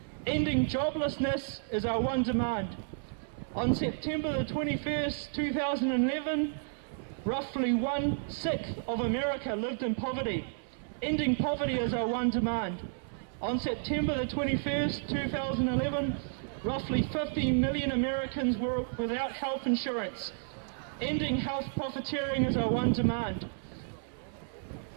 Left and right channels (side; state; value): left; silent; 57 dB below the other